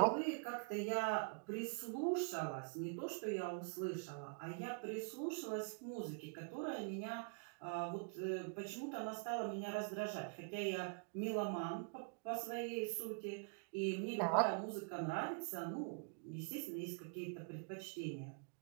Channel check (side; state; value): left; quieter; 39.3 dB